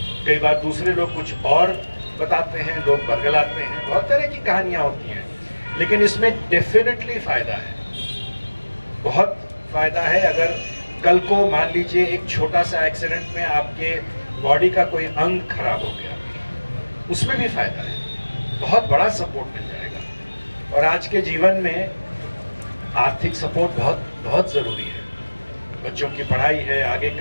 कई बार दूसरे लोग कुछ और बताते हैं, लोग बरगलाते हैं, बहुत तरह की कहानियां होती हैं। लेकिन इसमें डेफिनेटली फायदा है, बहुत फायदा है। अगर कल को मान लीजिए एक छोटा सा एक्सीडेंट में आपके बॉडी का कोई अंग खराब हो गया, उसमें भी फायदा है, बहुत बड़ा सपोर्ट मिल जाएगा। और आज के जीवन में आर्थिक सपोर्ट बहुत बहुत ज़रूरी है। बच्चों की पढ़ाई है, आगे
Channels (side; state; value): both; inverted; correlation -1.00